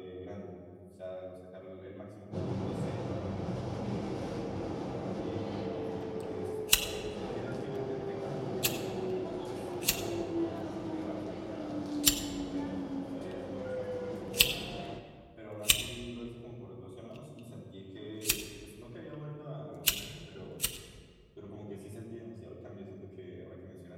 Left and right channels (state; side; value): identical; both; correlation 1.00